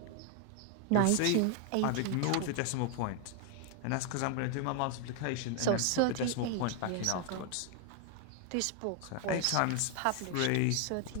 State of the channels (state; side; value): different; both; correlation 0.01